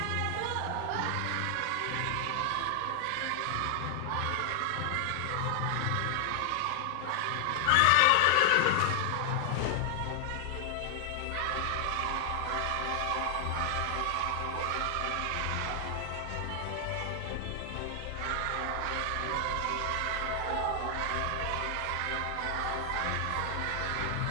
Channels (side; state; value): both; different; correlation 0.00